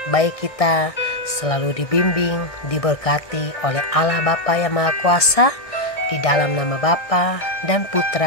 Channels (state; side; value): late; right; 1.6 ms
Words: baik kita selalu dibimbing, diberkati oleh Allah Bapa yang Maha Kuasa, di dalam nama Bapa dan